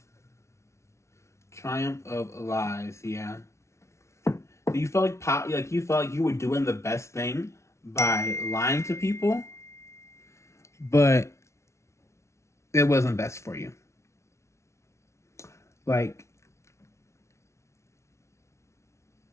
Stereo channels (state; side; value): late; right; 0.13 ms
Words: Triumph of lies, yeah. You felt like you felt like you were doing the best thing by lying to people, but it wasn't best for you. Like,